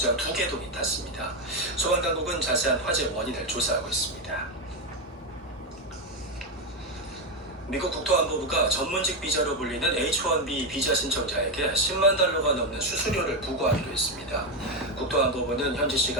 2개동이 탔습니다. 소방당국은 자세한 화재 원인을 조사하고 있습니다. 미국 국토안보부가 전문직 비자로 불리는 H-1B 비자 신청자에게 10만 달러가 넘는 수수료를 부과하기로 했습니다. 국토안보부는 현지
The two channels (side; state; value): both; normal; correlation 0.08